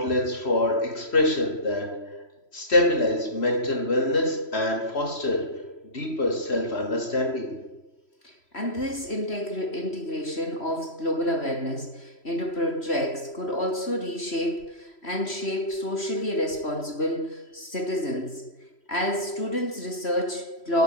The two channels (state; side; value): late; right; 3.1 ms